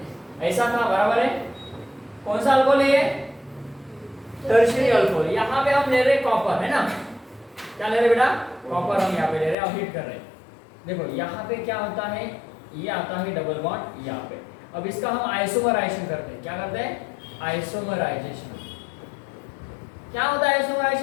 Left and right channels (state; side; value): drops out; right; at 9.6 s